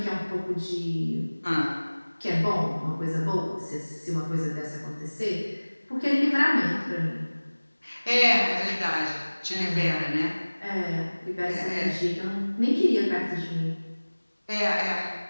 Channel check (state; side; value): inverted; both; correlation -1.00